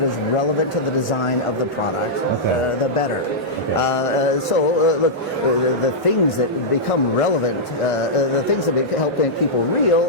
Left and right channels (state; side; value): normal; both; correlation -0.10